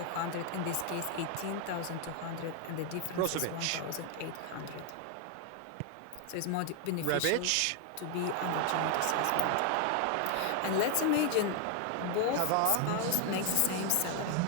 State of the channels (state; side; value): different; both; correlation 0.00